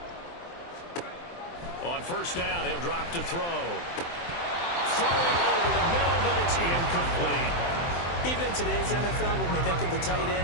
On first down, he'll drop to throw. Throwing over the middle, but it's incomplete. Even in today's NFL, when we think of the tight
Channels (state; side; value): late; right; 23 ms